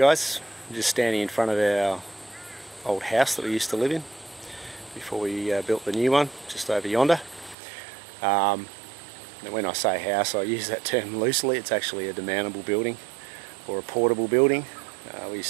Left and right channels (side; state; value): left; drops out; at 7.6 s